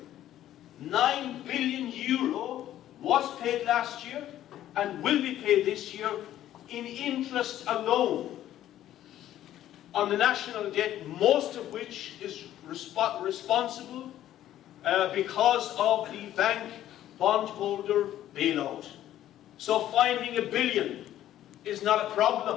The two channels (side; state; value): right; quieter; 12.5 dB